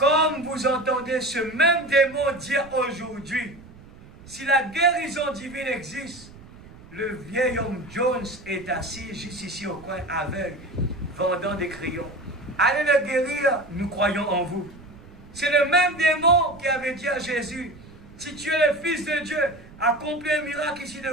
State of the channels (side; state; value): right; noise; rumble, 20 dB below the sound